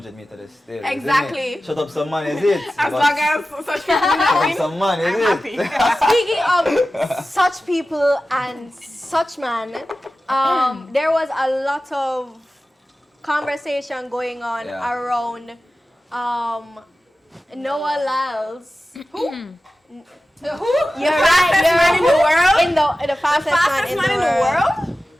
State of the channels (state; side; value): normal; both; correlation 0.95